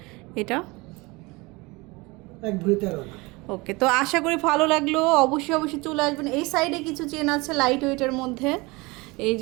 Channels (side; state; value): left; quieter; 24.5 dB